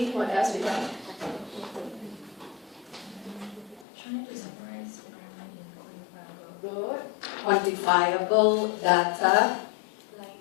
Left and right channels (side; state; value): right; drops out; at 3.9 s